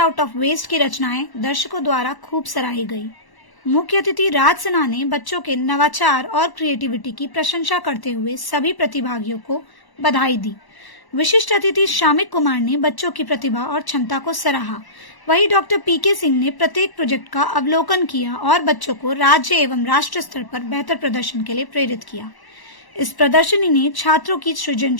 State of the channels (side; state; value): right; late; 1.0 ms